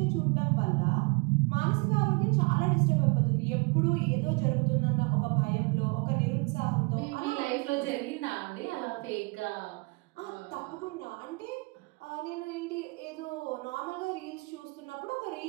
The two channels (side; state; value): left; quieter; 28.9 dB